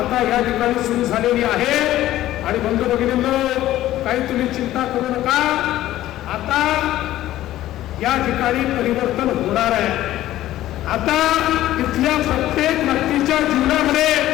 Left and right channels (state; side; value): quieter; right; 14.3 dB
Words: या ठिकाणी सुरू झालेली आहे आणि बंधू भगिनींनो, काही तुम्ही चिंता करू नका, आता या ठिकाणी परिवर्तन होणार आहे। आता इथल्या प्रत्येक व्यक्तीच्या जीवनामध्ये